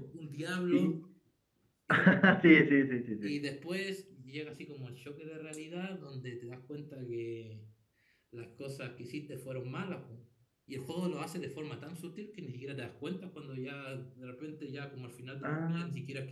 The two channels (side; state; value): both; identical; correlation 1.00